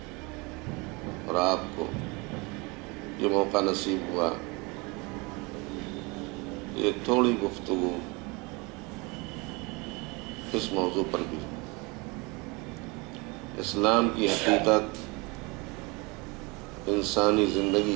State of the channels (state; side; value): quieter; left; 27.2 dB